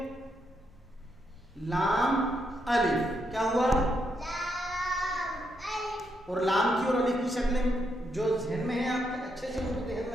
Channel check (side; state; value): both; normal; correlation 0.79